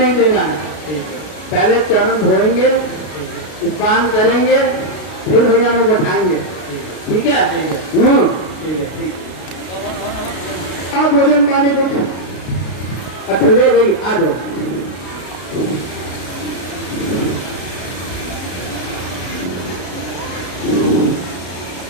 देना है। पहले चरण धोएंगे, स्नान करेंगे, फिर भैया में बैठाएंगे। ठीक है? आप भोजन पाने कुछ अच्छा ले गई, आ जाओ।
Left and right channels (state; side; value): late; right; 33 ms